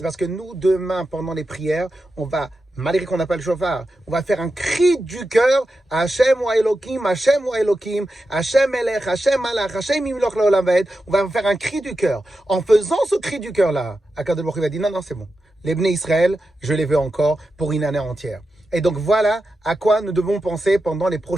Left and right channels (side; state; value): both; normal; correlation 0.90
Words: parce que nous, demain, pendant les prières, on va, malgré qu'on n'a pas le chauffard, on va faire un cri du cœur, Hashem wa Elokim, Hashem wa Elokim, Hashem Elech, Hashem Malach, Hashem Imloch Leolam Vaed. On va faire un cri du cœur. En faisant ce cri du cœur-là, Akadosh Baruch Hu va dire, non, c'est bon. Les Bnei Israël, je les veux encore pour une année entière. Et donc voilà à quoi nous devons penser pendant les